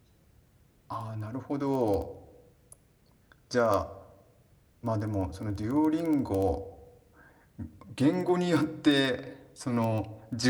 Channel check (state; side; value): identical; both; correlation 1.00